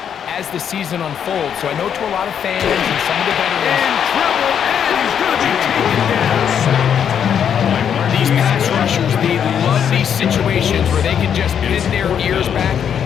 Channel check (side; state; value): right; quieter; 8.3 dB